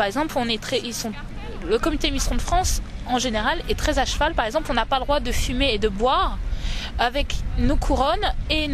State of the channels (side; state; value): both; identical; correlation 1.00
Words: exemple, le comité Miss Ronde France en général est très à cheval. Par exemple, on n'a pas le droit de fumer et de boire avec nos couronnes et